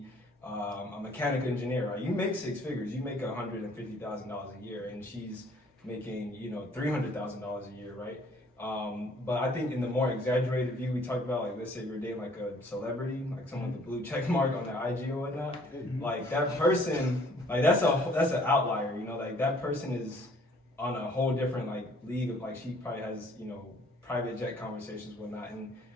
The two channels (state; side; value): normal; both; correlation 0.59